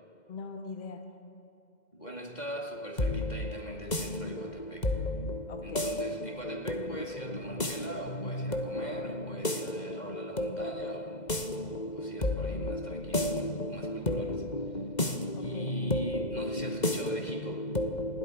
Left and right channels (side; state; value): right; late; 2.1 ms